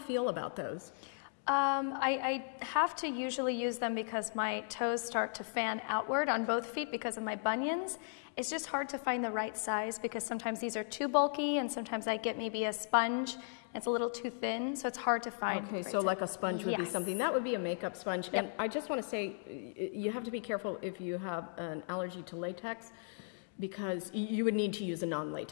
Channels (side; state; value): right; silent; digital silence